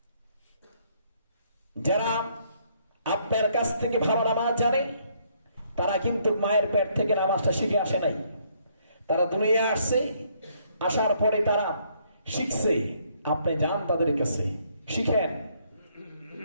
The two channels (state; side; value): inverted; both; correlation -0.68